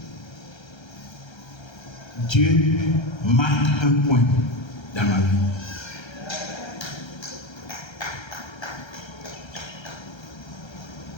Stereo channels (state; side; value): late; right; 1.3 ms